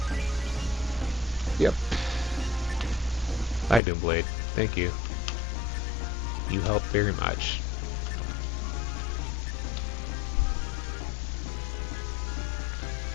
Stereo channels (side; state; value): right; drops out; at 3.8 s